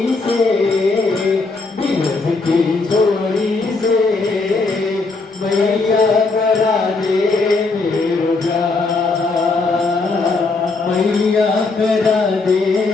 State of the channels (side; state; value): right; quieter; 3.8 dB